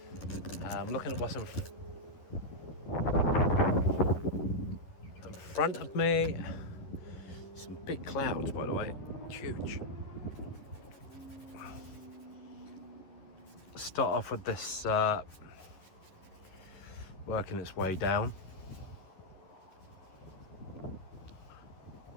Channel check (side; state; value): right; late; 11 ms